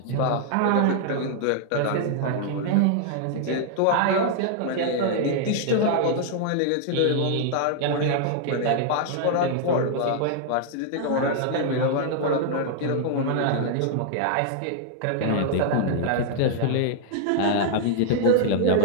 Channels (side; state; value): both; different; correlation 0.00